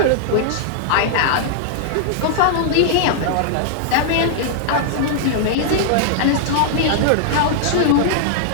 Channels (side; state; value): both; different; correlation -0.01